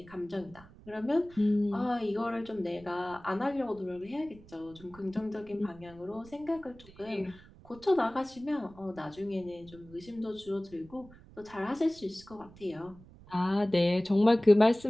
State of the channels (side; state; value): right; noise; rumble, 22 dB below the sound